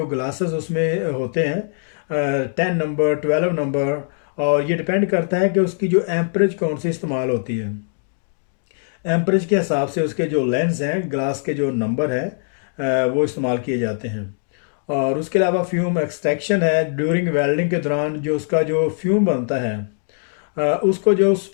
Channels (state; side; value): silent; right; digital silence